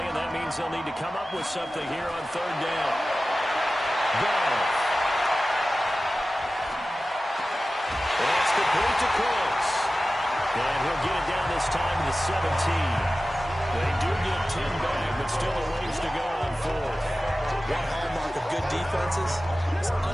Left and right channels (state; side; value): normal; both; correlation 0.95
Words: and that means they'll need to come up with something here on third down. Ball. That's complete to Close. And he'll get it down this time to the 17. They do get 10 back, but still a ways to go on fourth. One hallmark of good defenses is